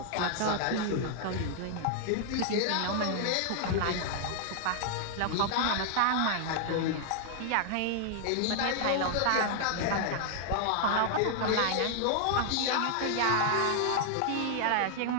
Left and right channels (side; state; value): both; different; correlation -0.01